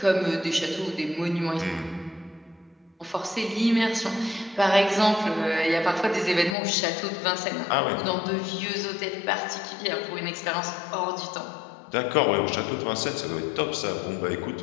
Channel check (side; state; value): right; drops out; at 6.6 s